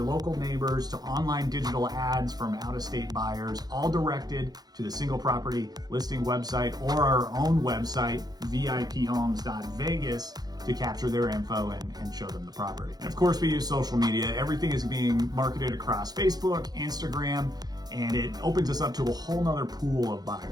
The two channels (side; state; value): left; late; 0.19 ms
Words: local neighbors, to online digital ads from out-of-state buyers, all directed to the single property listing website or our own website, viphomes.vegas, to capture their info and show them the property. And of course, we use social media. Everything is being marketed across Facebook, Instagram, and it opens us up to a whole nother pool of